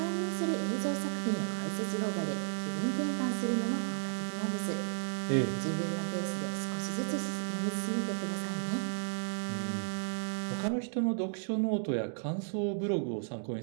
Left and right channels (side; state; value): left; silent; digital silence